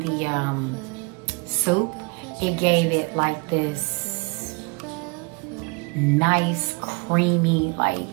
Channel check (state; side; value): quieter; left; 31.1 dB